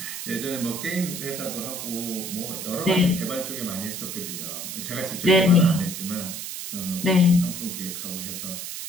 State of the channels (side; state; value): right; noise; hiss, 7 dB below the sound